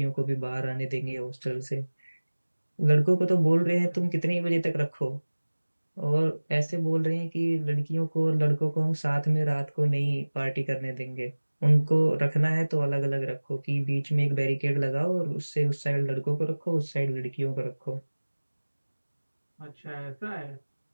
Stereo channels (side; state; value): both; inverted; correlation -1.00